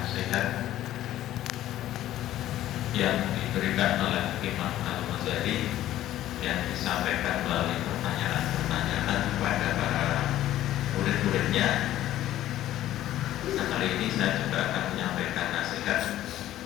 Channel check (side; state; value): right; quieter; 13.5 dB